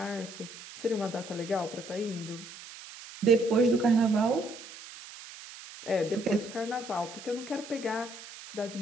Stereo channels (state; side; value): noise; right; hiss, 15 dB below the sound